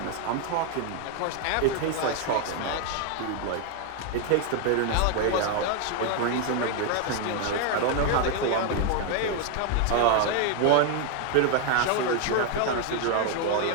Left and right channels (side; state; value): both; different; correlation 0.01